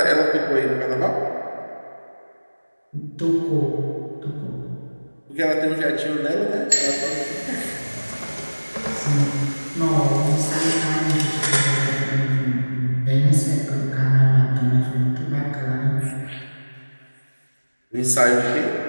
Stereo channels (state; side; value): inverted; both; correlation -1.00